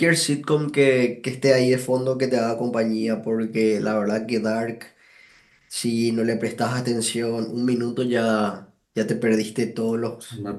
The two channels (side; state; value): both; identical; correlation 1.00